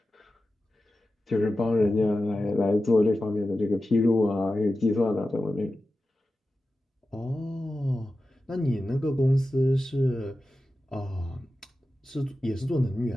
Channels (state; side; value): normal; both; correlation 0.93